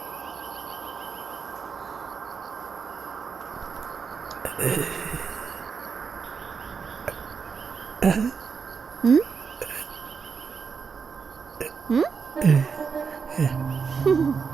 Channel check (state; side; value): quieter; left; 5.7 dB